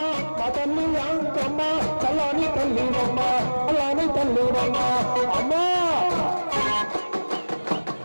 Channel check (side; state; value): both; inverted; correlation -1.00